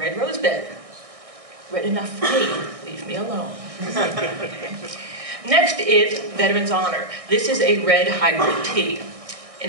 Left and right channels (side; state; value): left; late; 1.6 ms